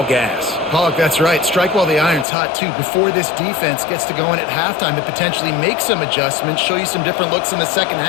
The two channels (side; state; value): right; drops out; at 2.2 s